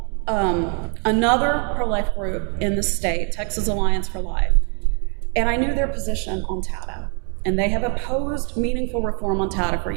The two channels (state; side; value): quieter; left; 38.8 dB